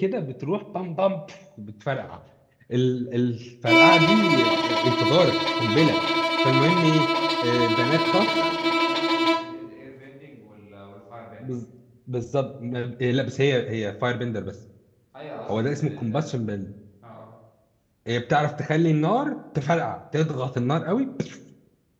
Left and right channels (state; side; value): identical; both; correlation 1.00